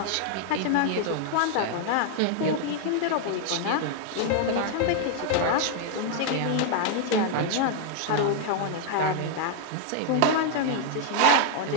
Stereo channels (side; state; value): both; different; correlation 0.00